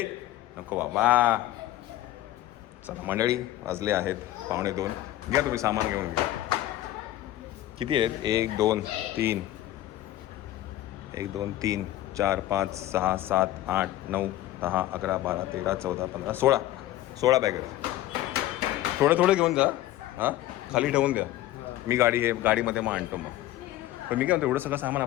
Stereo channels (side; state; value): right; quieter; 14.6 dB